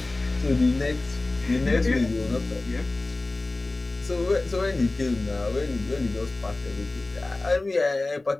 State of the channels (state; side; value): quieter; right; 3.1 dB